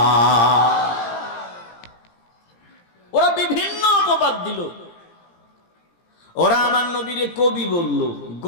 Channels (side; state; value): right; late; 17 ms